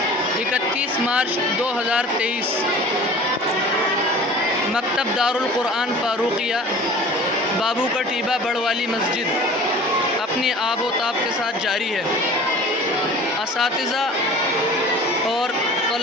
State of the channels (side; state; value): both; normal; correlation 0.42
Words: 31 मार्च 2023 मकतब दारुल क़ुरआन फ़ारूक़िया बाबू का टीबा बड़वाली मस्जिद अपनी आबो ताब के साथ जारी है। असातिज़ा और